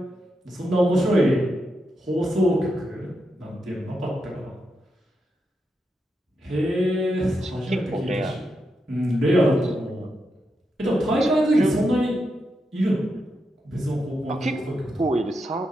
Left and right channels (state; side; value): normal; both; correlation 0.85